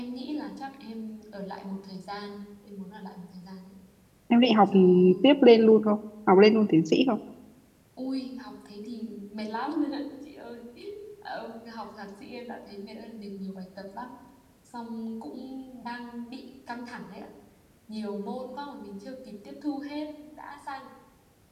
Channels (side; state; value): both; identical; correlation 1.00